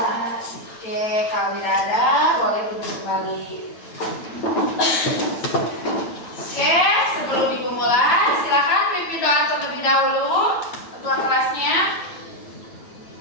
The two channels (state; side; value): late; right; 9.1 ms